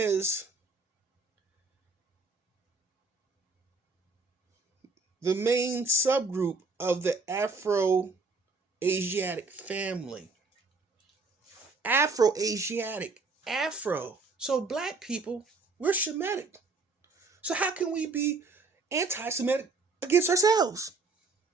the main subgroup of the Afro-Asiatic family. Afro-Asiatic. Afro. So black people, we're Semitic. So how can we be anti-Semitic against ourselves?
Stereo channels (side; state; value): left; quieter; 3.9 dB